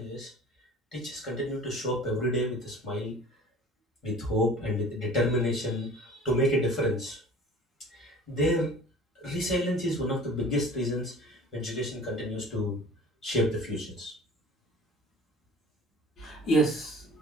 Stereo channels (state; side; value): normal; both; correlation 0.44